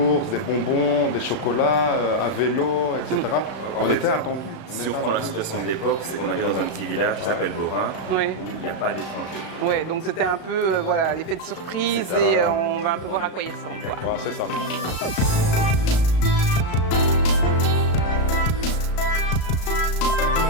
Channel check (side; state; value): right; late; 35 ms